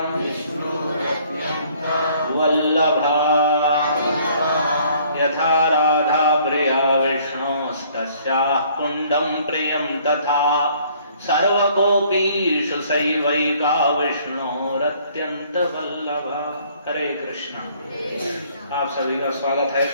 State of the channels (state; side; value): inverted; both; correlation -0.60